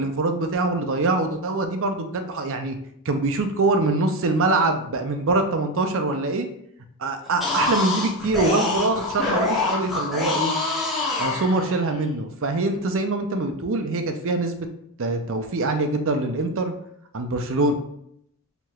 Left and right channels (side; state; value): both; normal; correlation 0.14